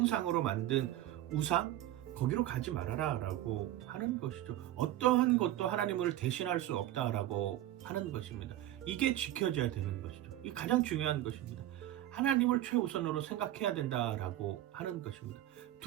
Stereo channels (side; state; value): left; quieter; 13.8 dB